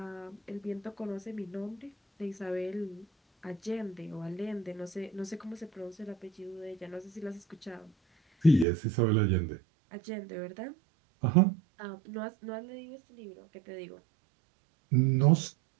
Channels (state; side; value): drops out; left; at 8.7 s